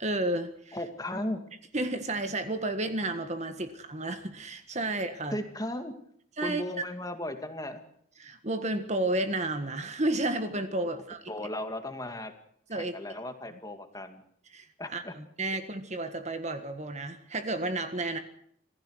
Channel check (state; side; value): normal; both; correlation 0.27